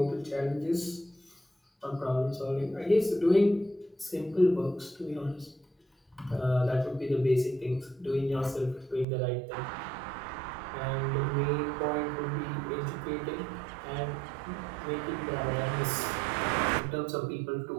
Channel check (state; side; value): drops out; left; at 9.1 s